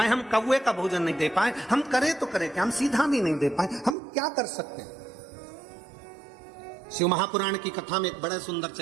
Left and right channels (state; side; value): drops out; left; at 4.0 s